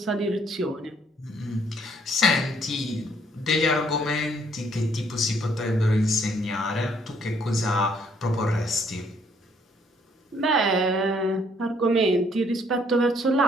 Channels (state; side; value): normal; both; correlation 0.66